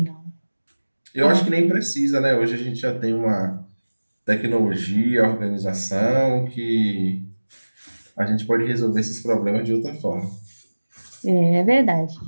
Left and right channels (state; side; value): inverted; both; correlation -1.00